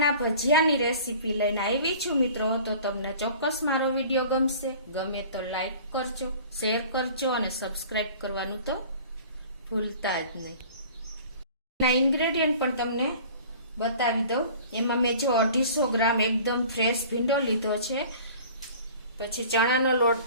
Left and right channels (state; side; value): inverted; both; correlation -0.45